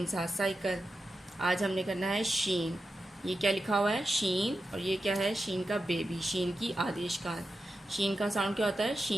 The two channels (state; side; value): normal; both; correlation 0.90